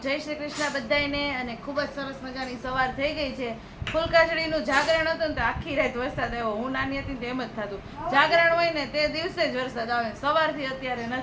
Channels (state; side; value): identical; both; correlation 1.00